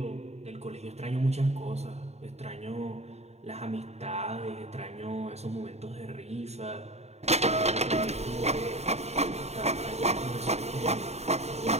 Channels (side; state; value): left; late; 0.31 ms